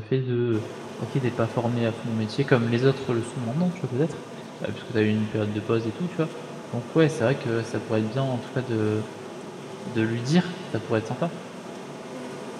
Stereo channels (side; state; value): both; identical; correlation 1.00